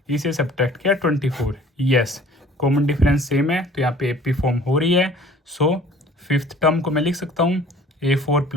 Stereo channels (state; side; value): normal; both; correlation 0.50